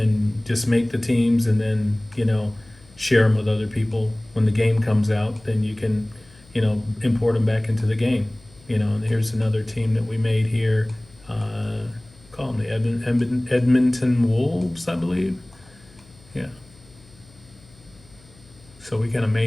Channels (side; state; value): left; noise; hum, 27 dB below the sound